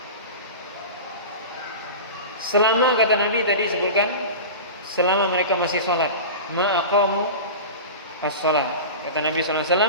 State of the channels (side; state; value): both; inverted; correlation -0.30